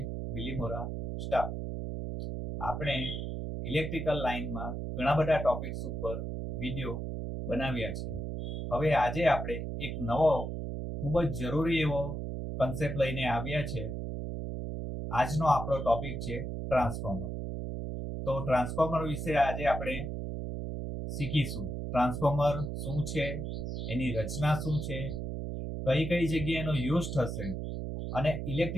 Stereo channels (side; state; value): right; noise; hum, 4 dB below the sound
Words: Bilimora staff. આપણે ઇલેક્ટ્રિકલ લાઇનમાં ઘણા બધા ટોપિક્સ ઉપર વિડીયો બનાવ્યા છે. હવે આજે આપણે એક નવો ખૂબ જ જરૂરી એવો કન્સેપ્ટ લઈને આવ્યા છે. આજનો આપણો ટોપિક છે ટ્રાન્સફોર્મર. તો ટ્રાન્સફોર્મર વિશે આજે આપણે શીખીશું. ટ્રાન્સફોર્મર શું છે, એની રચના શું છે, કઈ કઈ જગ્યાએ એનો યુઝ થશે અને